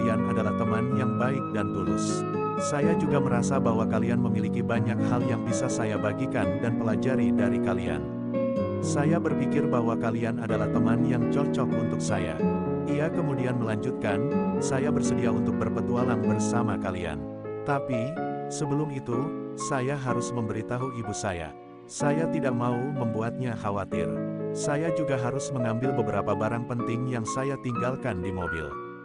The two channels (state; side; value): identical; both; correlation 1.00